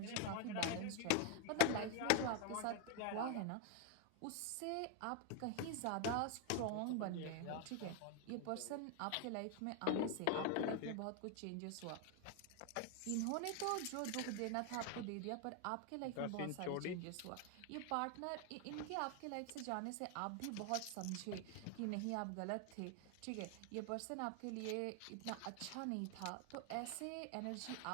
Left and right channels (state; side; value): different; both; correlation 0.01